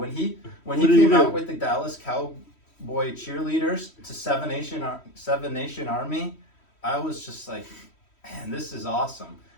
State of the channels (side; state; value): right; late; 3.1 ms